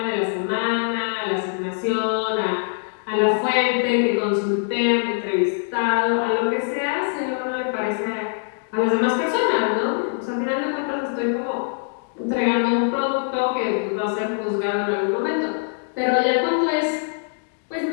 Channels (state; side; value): silent; right; digital silence